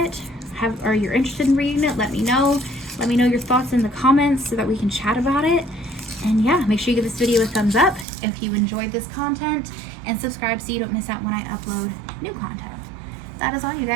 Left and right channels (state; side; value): drops out; left; at 8.1 s